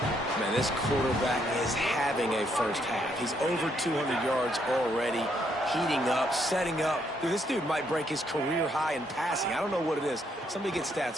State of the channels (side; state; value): both; normal; correlation 0.73